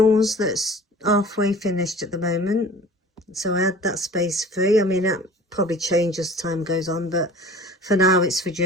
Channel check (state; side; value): normal; both; correlation 0.43